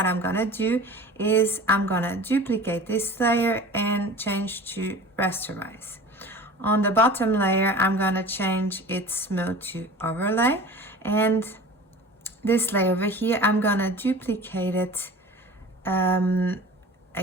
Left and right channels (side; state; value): both; normal; correlation 0.39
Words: I'm gonna do is I'm gonna duplicate this layer and change to rasterize. On the bottom layer, I'm gonna change its mode to overlay, and this layer over here, I'm gonna duplicate it. I'm